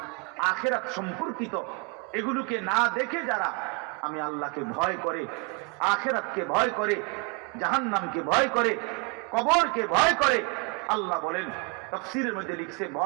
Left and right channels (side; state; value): left; quieter; 30.9 dB